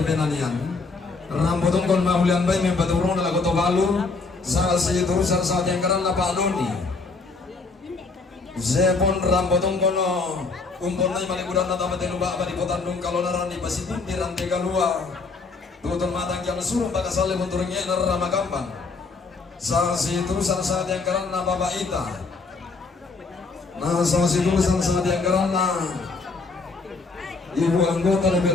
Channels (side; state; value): right; quieter; 4.1 dB